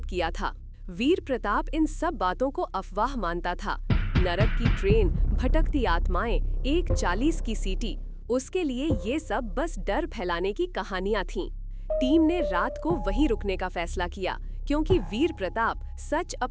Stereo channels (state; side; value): identical; both; correlation 1.00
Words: किया था। वीर प्रताप इन सब बातों को अफवाह मानता था। नरक की ट्रेन, भटकती आत्माएं, 1:40 की सीटी, उसके लिए ये सब बस डर फैलाने की कहानियां थीं। टीम ने रात को वहीं रुकने का फैसला किया क्योंकि वीर प्रताप सच